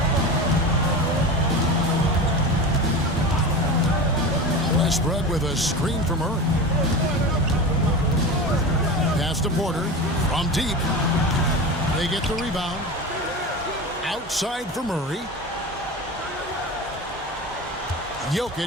Westbrook with a screen for Murray. Pass to Porter from deep. They get the rebound. Outside for Murray.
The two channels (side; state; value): both; normal; correlation 0.28